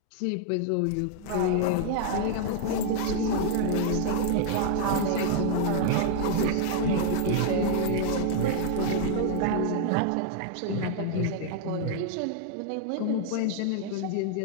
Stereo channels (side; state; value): both; different; correlation 0.00